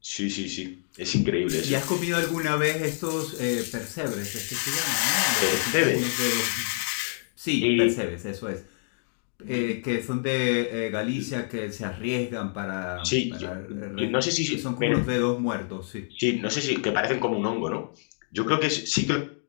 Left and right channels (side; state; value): right; silent; 60 dB below the other